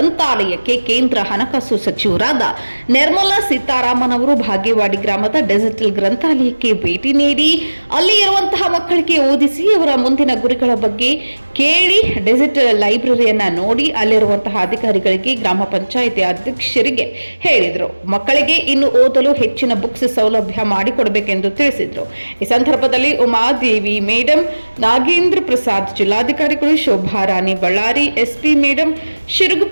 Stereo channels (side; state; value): both; inverted; correlation -1.00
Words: ಕೇಂದ್ರ ಹಣಕಾಸು ಸಚಿವರಾದ ನಿರ್ಮಲಾ ಸೀತಾರಾಮನ್ ಅವರು ಬಾಗೇವಾಡಿ ಗ್ರಾಮದ ಡಿಜಿಟಲ್ ಗ್ರಂಥಾಲಯಕ್ಕೆ ಭೇಟಿ ನೀಡಿ ಅಲ್ಲಿ ಇರುವಂತಹ ಮಕ್ಕಳಿಗೆ ಓದಿಸಿ ಅವರ ಮುಂದಿನ ಗುರಿಗಳ ಬಗ್ಗೆ ಕೇಳಿ ಡಿಜಿಟಲ್ ಲೈಬ್ರರಿಯನ್ನ ನೋಡಿ ಅಲ್ಲಿರುವಂತಹ ಅಧಿಕಾರಿಗಳಿಗೆ ಗ್ರಾಮ ಪಂಚಾಯಿತಿ ಅಧ್ಯಕ್ಷರಿಗೆ ಹೇಳಿದರು. ಮಕ್ಕಳಿಗೆ ಇನ್ನು ಓದಲು ಹೆಚ್ಚಿನ ಬುಕ್ಸ್ ಸೌಲಭ್ಯ ಮಾಡಿಕೊಡಬೇಕೆಂದು ತಿಳಿಸಿದರು. ಈ ಸಂದರ್ಭದಲ್ಲಿ ಉಮಾದೇವಿ ಮೇಡಂ, ನಾಗೇಂದ್ರ ಪ್ರಸಾದ್ ಜಿಲ್ಲಾಧಿಕಾರಿಗಳು, ಶೋಭಾರಾಣಿ ಬಳ್ಳಾರಿ ಎಸ್ಪಿ ಮೇಡಂ,